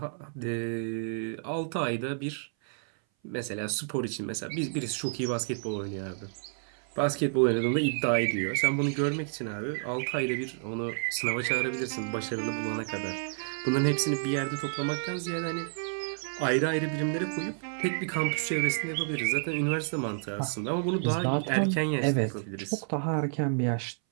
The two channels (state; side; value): silent; left; 58 dB below the other